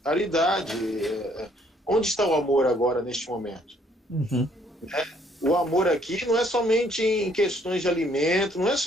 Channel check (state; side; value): normal; both; correlation 0.65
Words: Caridade. Onde está o amor agora, neste momento? O amor aqui não é somente em questões de alimento, não é